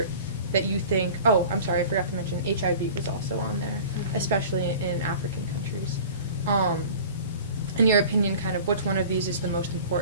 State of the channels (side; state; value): both; inverted; correlation -0.41